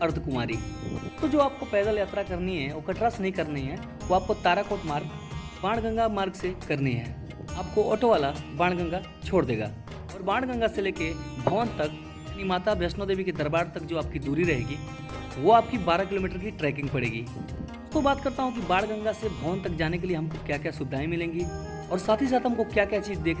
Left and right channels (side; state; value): both; identical; correlation 1.00